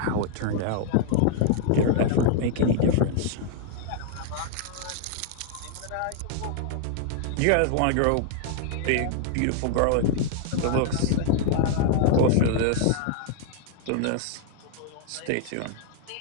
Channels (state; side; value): different; both; correlation -0.01